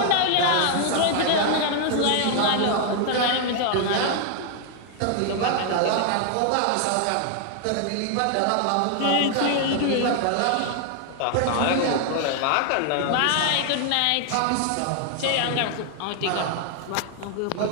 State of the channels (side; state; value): both; different; correlation 0.00